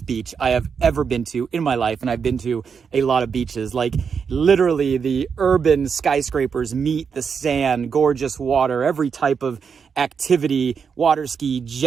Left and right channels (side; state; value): left; quieter; 6.3 dB